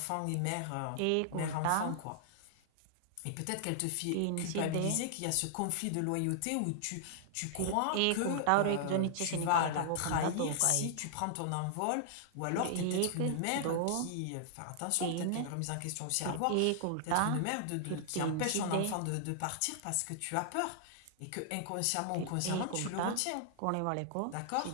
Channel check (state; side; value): different; both; correlation -0.01